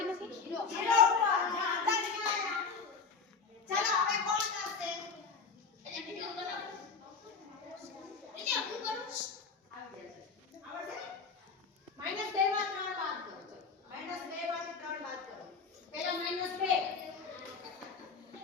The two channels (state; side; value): quieter; right; 5.1 dB